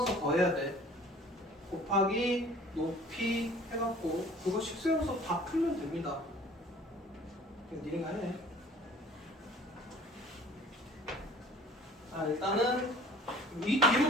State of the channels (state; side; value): normal; both; correlation 0.49